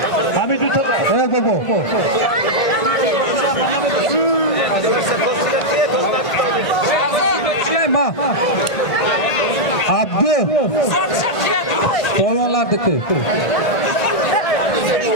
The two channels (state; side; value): late; right; 1.8 ms